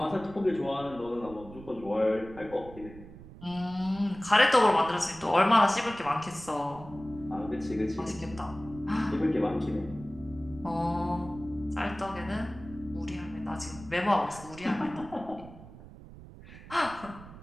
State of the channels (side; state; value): right; noise; rumble, 17 dB below the sound